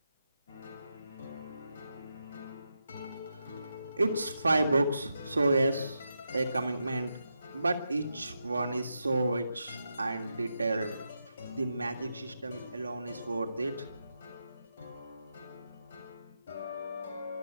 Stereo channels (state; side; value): inverted; both; correlation -0.85